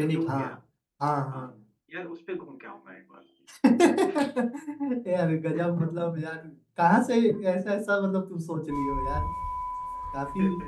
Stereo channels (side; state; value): both; identical; correlation 1.00